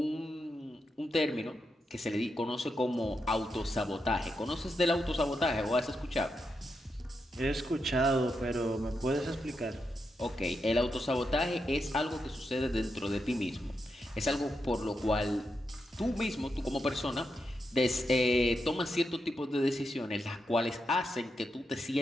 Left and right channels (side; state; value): both; normal; correlation 0.85